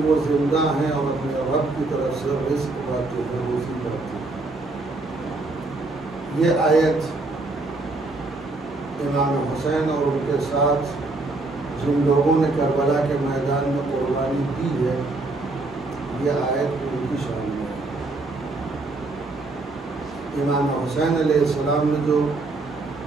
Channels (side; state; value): left; quieter; 3.2 dB